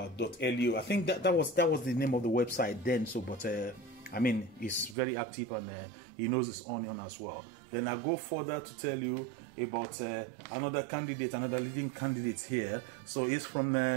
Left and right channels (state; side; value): drops out; left; at 5.0 s